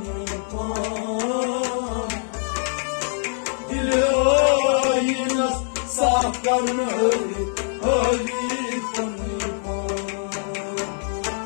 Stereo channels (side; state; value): right; silent; digital silence